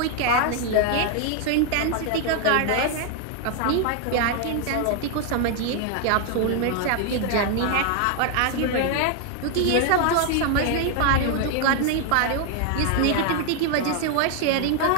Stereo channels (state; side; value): different; both; correlation 0.00